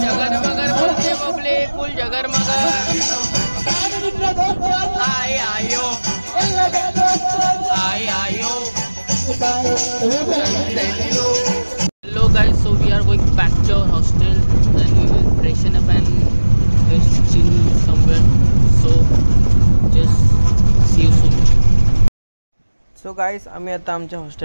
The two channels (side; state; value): both; inverted; correlation -1.00